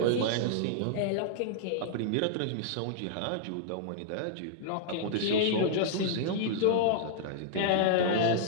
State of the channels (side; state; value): both; different; correlation -0.01